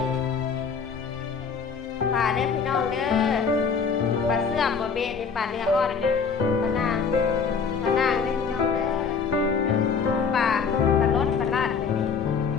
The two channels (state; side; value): quieter; right; 5.8 dB